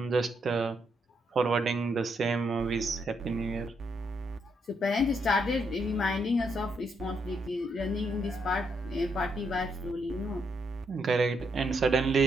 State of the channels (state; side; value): normal; both; correlation 0.77